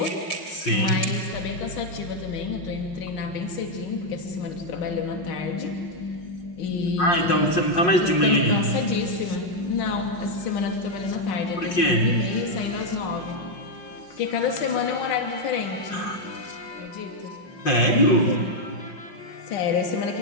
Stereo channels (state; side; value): late; right; 5.6 ms